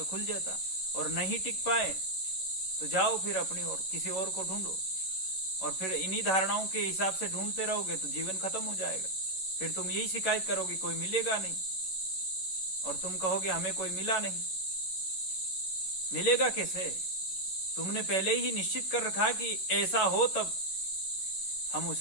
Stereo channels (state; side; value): late; right; 11 ms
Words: खुल जाता, और नहीं टिक पाए तो जाओ फिर अपनी ओर, किसी और को ढूंढो। और फिर इन्हीं धारणाओं के हिसाब से ढूंढते रहोगे तो जीवन खत्म हो जाएगा। फिर तुम यही शिकायत करोगे कोई मिलेगा नहीं, और तुम कहोगे हमें कोई मिला नहीं। मिलेगा कैसे? तुमने पहले ही निश्चित कर रखा कि ऐसा हो तब हम